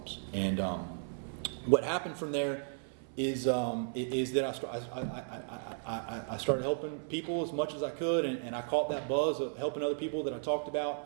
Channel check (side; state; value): left; silent; 55 dB below the other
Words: And what happened from there is that I started helping people as much as I could, and I caught that buzz of helping other people that I talked